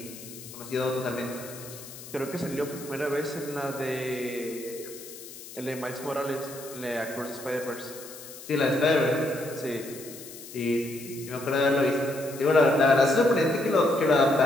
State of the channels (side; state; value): left; noise; hiss, 15 dB below the sound